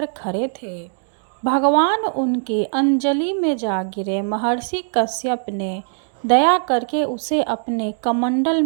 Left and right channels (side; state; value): left; silent; digital silence